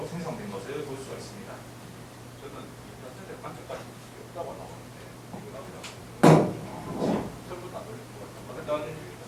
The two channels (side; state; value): both; identical; correlation 1.00